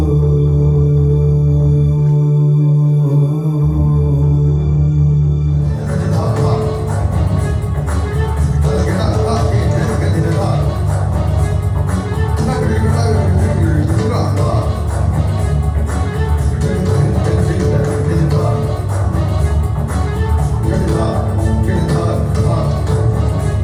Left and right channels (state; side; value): identical; both; correlation 1.00